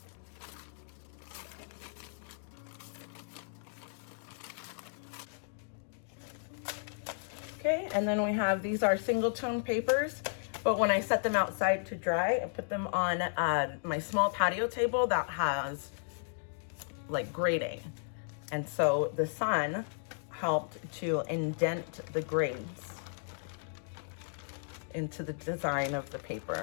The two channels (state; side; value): silent; right; digital silence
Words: Okay, and then we have, these are single tone papers, but when I set them outside to dry, I put them on my small patio table that has like grating. And so the sun helped to indent the grains into the design of the